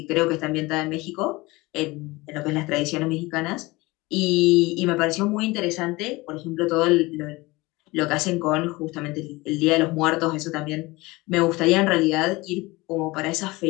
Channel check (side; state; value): right; quieter; 22.0 dB